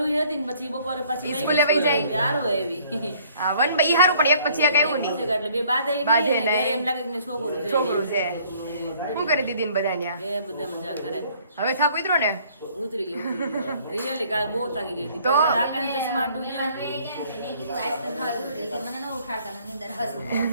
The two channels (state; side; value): inverted; both; correlation -0.59